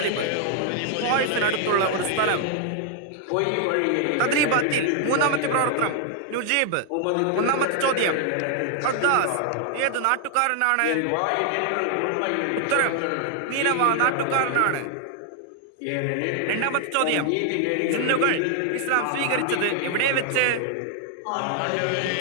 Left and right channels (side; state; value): both; different; correlation 0.00